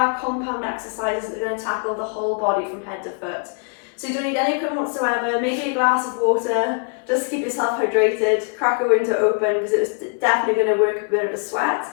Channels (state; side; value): quieter; right; 38.8 dB